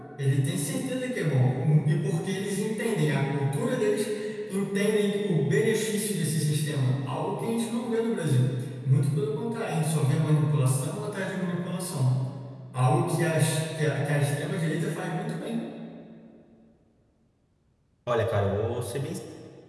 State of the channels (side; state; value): both; identical; correlation 1.00